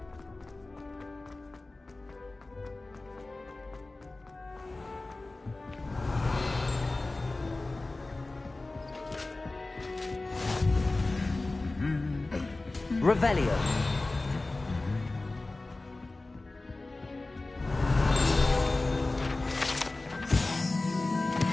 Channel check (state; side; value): quieter; right; 3.1 dB